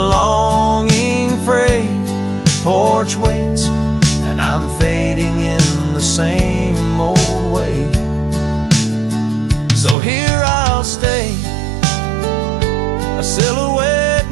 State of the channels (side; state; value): left; drops out; at 10.0 s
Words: fray. Porch waits, and I'm fading in the same old way. So here I'll stay, a silhouette